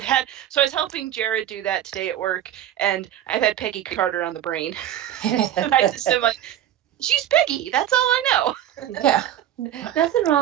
was helping Jared do that today at work, and I've had Peggy Carter on the brain. And I just am like, she's Peggy. That's all I know. Yeah. Nothing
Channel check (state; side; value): quieter; left; 11.4 dB